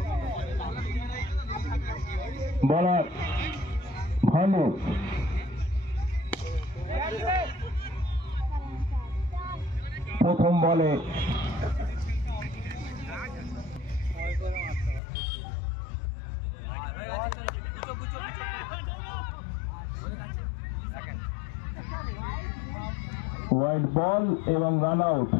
বলার ভালো। প্রথম বলে হোয়াইট বল এবং রান আউট।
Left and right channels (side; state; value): right; drops out; at 15.0 s